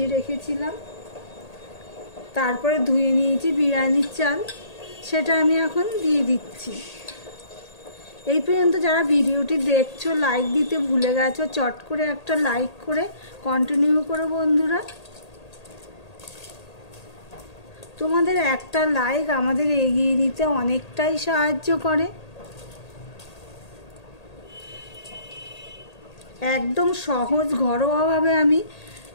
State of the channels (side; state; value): right; late; 1.8 ms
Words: রেখেছিলাম, তারপরে ধুয়ে নিয়েছি বিরিয়ানির চাল, সেটা আমি এখন দিয়ে দিচ্ছি। এই পর্যন্ত যারা ভিডিওটি দেখছো লাইক দিতে ভুলে গেছো, চট করে একটা লাইক করে কন্টিনিউ করো বন্ধুরা। তোমাদের একটা লাইক আমাদের এগিয়ে নিতে অনেকটাই সাহায্য করে। একদম সহজ ঘরোয়াভাবে আমি